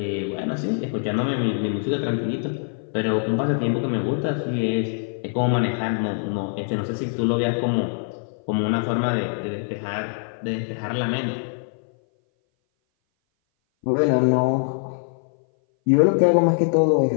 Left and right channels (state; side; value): silent; right; 59 dB below the other